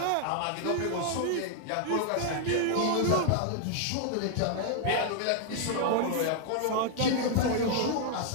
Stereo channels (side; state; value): both; different; correlation 0.00